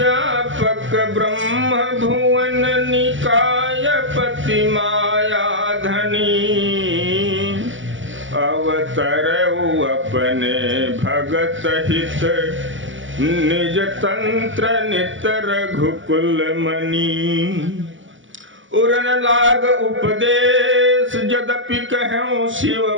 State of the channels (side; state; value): left; late; 0.56 ms